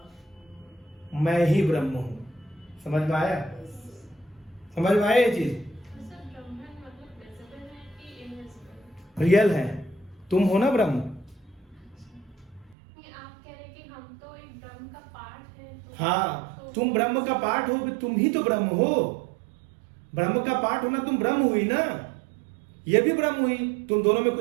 मैं ही ब्रह्म हूं। समझ में आया? समझ में आया ये चीज? रियल है, तुम हो ना ब्रह्म। आप कह रहे कि हम तो एक ब्रह्म का पार्ट है, तो हाँ, तुम ब्रह्म का पार्ट हो, तुम ही तो ब्रह्म हो। ब्रह्म का पार्ट होना, तुम ब्रह्म हुई ना, ये भी ब्रह्म हुई। तुम दोनों में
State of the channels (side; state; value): left; drops out; at 12.8 s